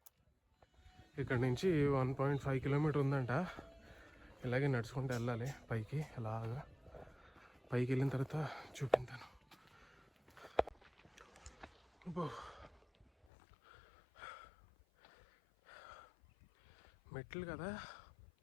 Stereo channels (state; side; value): drops out; right; at 13.2 s